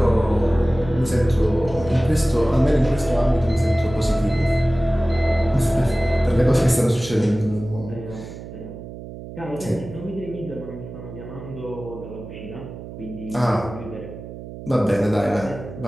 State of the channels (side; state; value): right; noise; hum, 12 dB below the sound